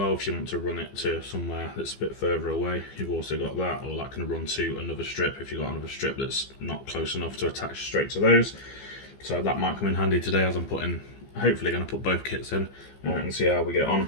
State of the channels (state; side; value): late; right; 15 ms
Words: if you want to run it to somewhere that's a bit further away. You've also got that, or that can run to another strip if you've got another strip that's not close enough to attach straight to those. So that might come in handy today, as I'm hopefully going to put both kits in and see how we get on.